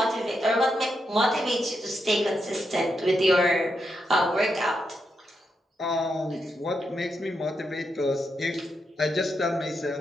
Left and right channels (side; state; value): both; normal; correlation 0.83